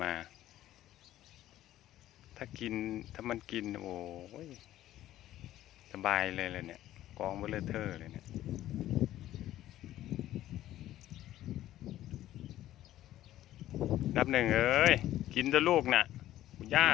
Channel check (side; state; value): right; quieter; 13.7 dB